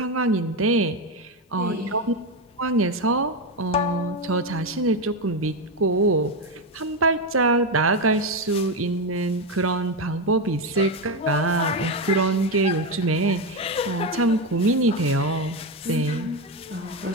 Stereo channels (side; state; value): both; normal; correlation 0.11